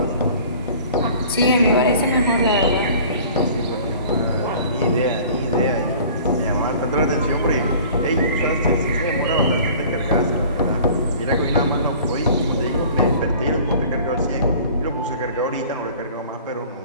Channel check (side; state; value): both; inverted; correlation -0.47